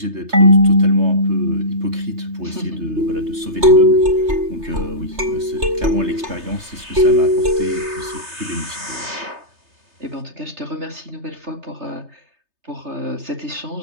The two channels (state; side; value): late; left; 3.3 ms